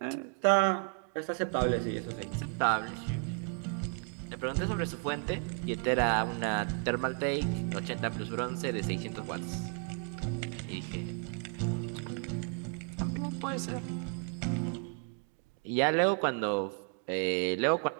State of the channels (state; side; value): quieter; left; 38.7 dB